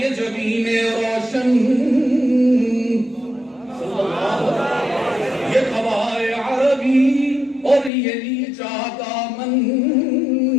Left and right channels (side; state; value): right; drops out; at 7.9 s